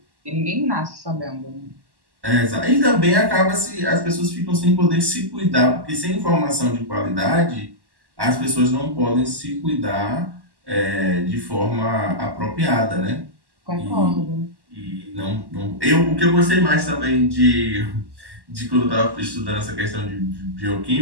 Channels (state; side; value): late; left; 1.1 ms